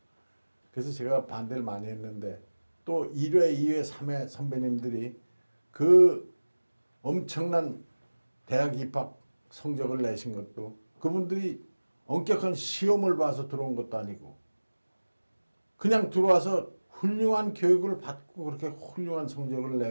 그래서 제가 반대를 많이 했는데 또 1회, 2회, 3회 선배님들이 그 엄청난 대학 입학 성적을 내신 것도 그분들이 엄격한 시험을 봐서 들어온 것도 아니고 그냥 들어와서 훌륭한 교육을 받고 그렇게 훌륭한 성적을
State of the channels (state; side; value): inverted; both; correlation -1.00